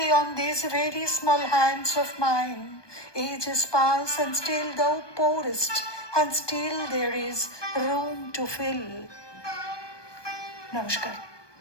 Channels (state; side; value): late; right; 1.2 ms